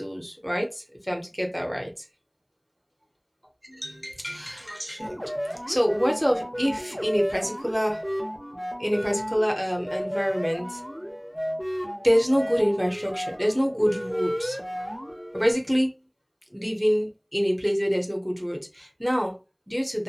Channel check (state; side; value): identical; both; correlation 1.00